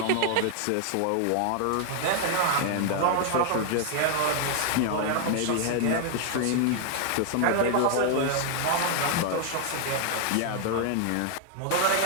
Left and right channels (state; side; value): different; both; correlation 0.00